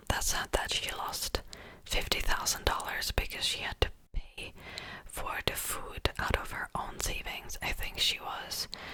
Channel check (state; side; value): identical; both; correlation 1.00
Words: that said that she lost $50,000 because she had to pay for the food out of her own savings. I think she was